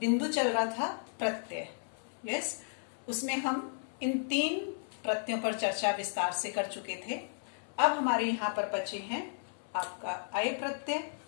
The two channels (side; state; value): right; silent; 55 dB below the other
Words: चल रहा था प्रत्यय। यस, उसमें हम इन 3 प्रत्ययों पर चर्चा विस्तार से कर चुके थे। अब हमारे यहाँ पर बचे हैं आपका अय प्रत्यय